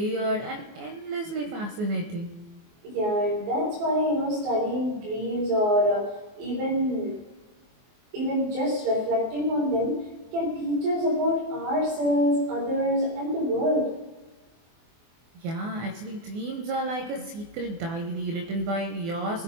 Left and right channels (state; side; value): late; left; 24 ms